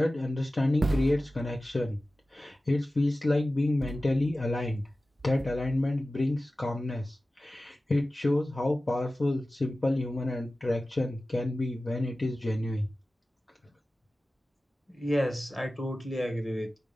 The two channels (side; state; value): both; normal; correlation 0.95